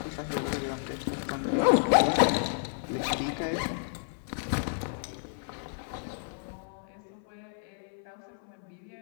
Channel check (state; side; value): silent; right; 57 dB below the other